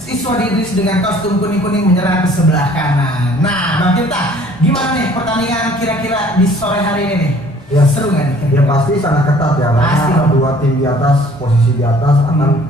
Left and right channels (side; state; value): both; normal; correlation 0.54